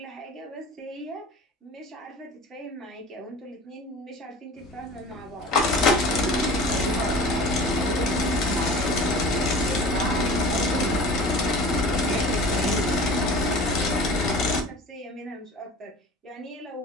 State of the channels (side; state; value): both; normal; correlation 0.40